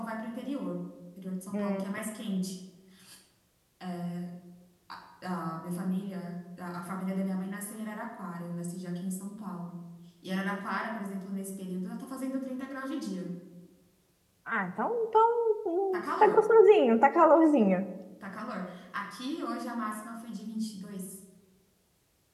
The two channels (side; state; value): both; identical; correlation 1.00